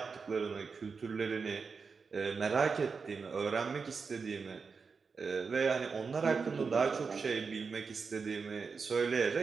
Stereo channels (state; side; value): quieter; left; 5.1 dB